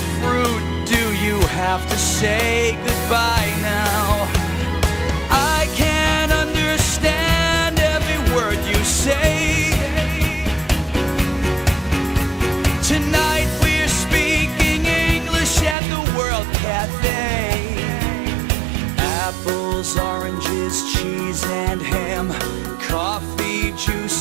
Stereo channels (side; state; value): left; drops out; at 15.8 s